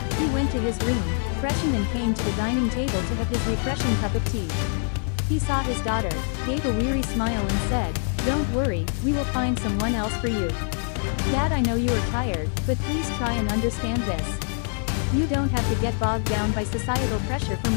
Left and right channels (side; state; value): right; silent; 55 dB below the other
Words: He went to his room, freshened and came to the dining table to have his refreshing cup of tea. He saw his daughter, gave a weary smile and said, "Don't worry, we will find someone else for you. Dad, I know you are tired, but please try and understand this. You don't have to get bogged down by societal pressure for